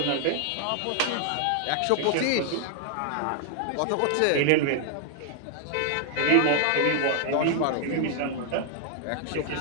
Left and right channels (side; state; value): both; different; correlation 0.00